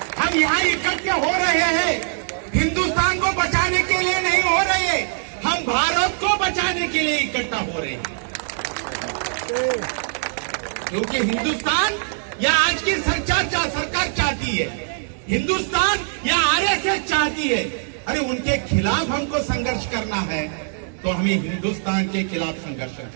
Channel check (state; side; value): silent; left; digital silence